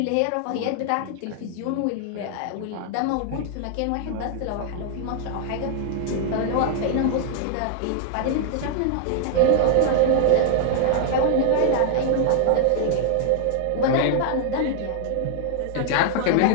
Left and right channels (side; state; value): both; different; correlation 0.00